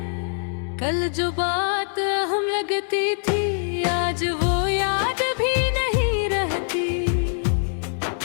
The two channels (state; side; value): silent; right; digital silence